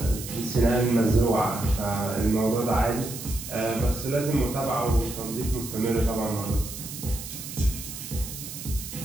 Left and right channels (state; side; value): noise; right; hiss, 10 dB below the sound